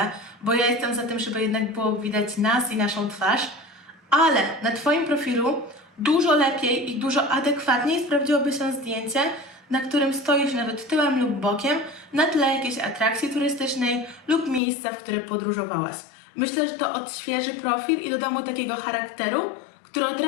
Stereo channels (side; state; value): right; drops out; at 14.6 s